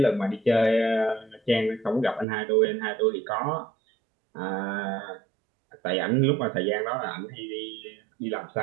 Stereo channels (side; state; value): left; drops out; at 2.2 s